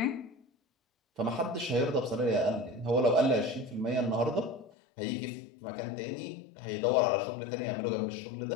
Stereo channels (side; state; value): right; drops out; at 4.7 s